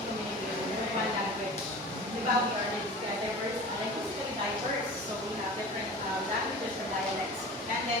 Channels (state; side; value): normal; both; correlation 0.37